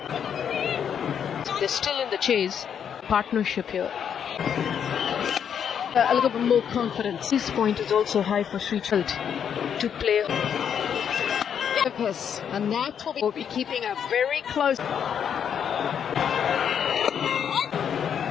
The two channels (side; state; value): right; quieter; 8.1 dB